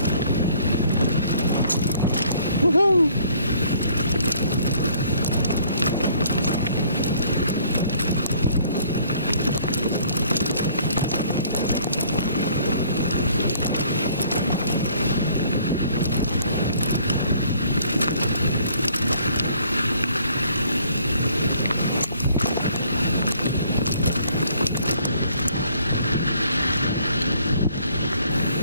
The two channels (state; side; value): inverted; both; correlation -0.60